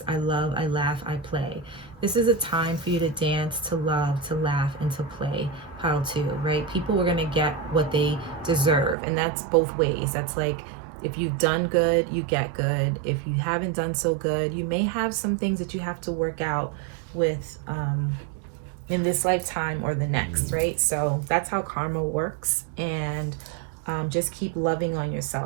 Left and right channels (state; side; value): drops out; left; at 9.0 s